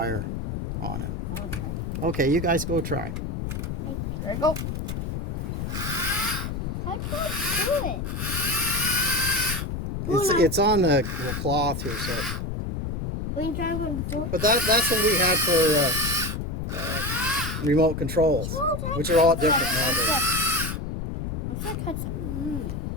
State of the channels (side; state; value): left; noise; rumble, 4 dB below the sound